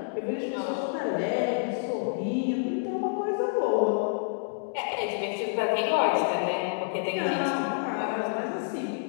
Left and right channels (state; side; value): silent; right; digital silence